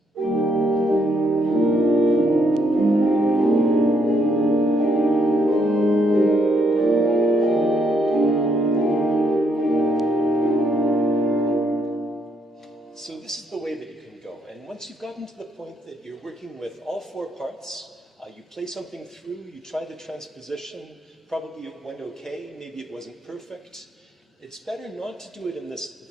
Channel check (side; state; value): both; normal; correlation 0.74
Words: So this is the way that you can go. And once you've gotten to the point that you're working with all four parts, you play something through, you try the transposition, probably it went okay, maybe it wasn't perfect. It's better not to do it in the